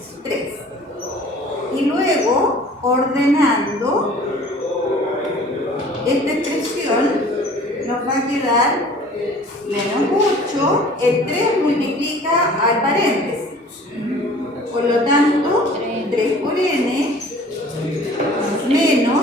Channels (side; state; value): both; normal; correlation 0.48